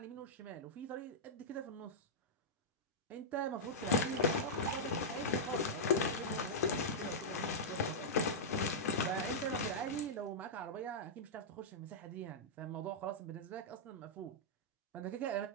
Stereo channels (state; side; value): normal; both; correlation -0.09